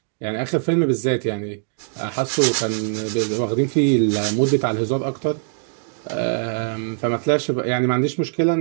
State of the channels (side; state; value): left; silent; digital silence